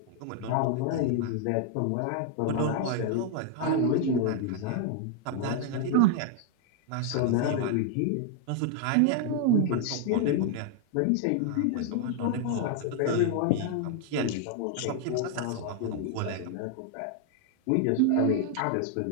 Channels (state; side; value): different; both; correlation 0.00